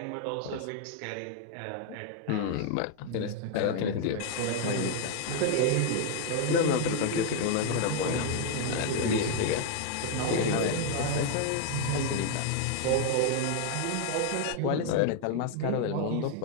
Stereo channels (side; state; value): both; different; correlation 0.00